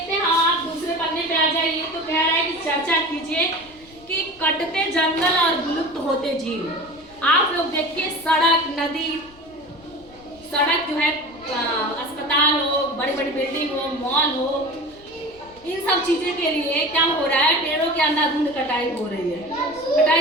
हैं। हाँ, आप दूसरे पन्ने पे आ जाइए। तो कह रहा है कि चर्चा कीजिए कि कटते जंगल और विलुप्त होते जीव। आप लोग देखिए, सड़क, नदी, सड़क जो है, अस्पताल हो, बड़ी बड़ी बिल्डिंग हो, मॉल हो, इन सब चीजें के लिए क्या हो रहा है? पेड़ों के अंधाधुंध कटाई हो रही है।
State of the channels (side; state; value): left; noise; rumble, 26 dB below the sound